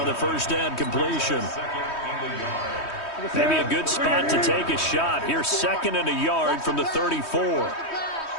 the first down completion. Maybe a good spot to take a shot. Here, 2nd and a yard from the 34.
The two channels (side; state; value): right; late; 3.2 ms